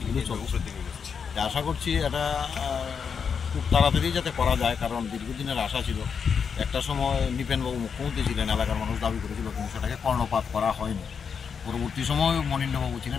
চলছে। আশা করছি এটা খুব তাড়াতাড়ি যাতে করা যায়, কারণ দীর্ঘদিনের আশা ছিল। একটা সময় নিপেনবাবু মুখ্যমন্ত্রী ছিলেন, এলাকার মানুষ দাবি করেছিল, কিন্তু সেটাকে কর্ণপাত করা হয়নি। পরবর্তী সময় মনীন্দ্রবাবু ছিলেন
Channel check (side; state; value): right; quieter; 6.4 dB